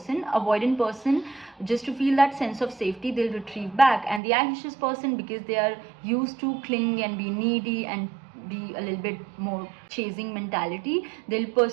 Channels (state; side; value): drops out; left; at 4.2 s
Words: avoidant person, just to feel that sense of safety, they'll retrieve back, and the anxious person, because they are used to cling and be needy and be a little bit more chasing mentality, they'll